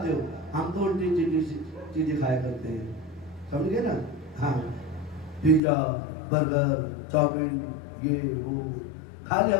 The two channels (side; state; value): right; drops out; at 5.6 s